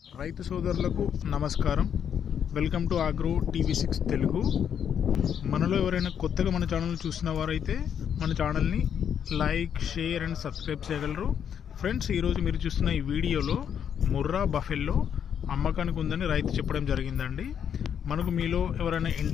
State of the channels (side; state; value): right; quieter; 8.4 dB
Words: రైతు సోదరులకు నమస్కారం. వెల్కమ్ టు ఆగ్రో టీవీ6 తెలుగు. మనలో ఎవరైనా కొత్తగా మన ఛానల్ చూసిన వారైతే మన ఛానల్ని లైక్, షేర్ అండ్ సబ్స్క్రైబ్ చేయగలరు. ఫ్రెండ్స్, ఈరోజు మీరు చూస్తున్న ఈ వీడియోలో ముర్రా బఫెల్లో అమ్మకానికి ఉందని రైతు చెప్పడం జరిగిందండి. మనకు మీలో ఎవరైనా